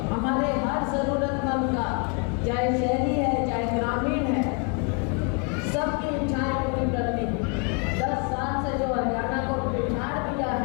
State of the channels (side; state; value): right; quieter; 36.2 dB